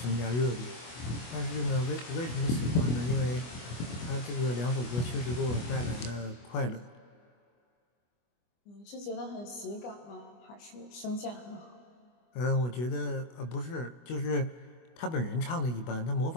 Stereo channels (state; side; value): late; right; 25 ms